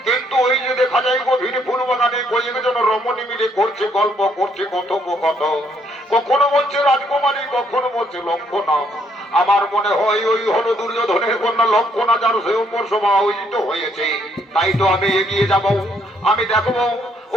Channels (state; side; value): normal; both; correlation 0.70